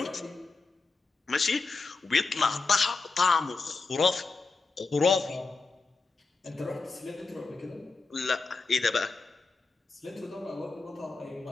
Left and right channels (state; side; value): quieter; right; 4.1 dB